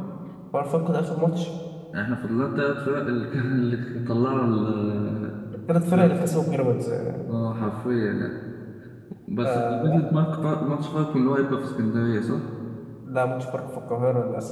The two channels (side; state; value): both; identical; correlation 1.00